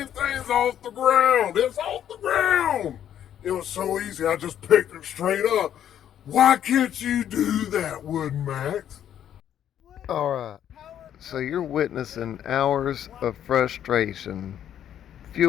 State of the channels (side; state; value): right; quieter; 10.2 dB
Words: thing's off the ground. It's off the ground. It was so easy. I just picked it straight up. Why can't you do that, Woodmaxx? All right. So you're witnessing hours of frustration